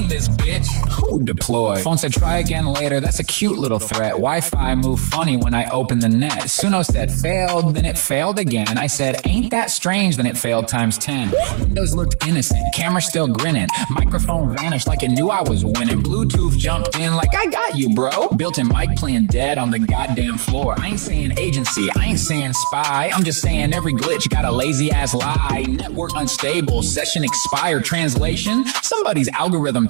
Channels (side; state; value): left; silent; digital silence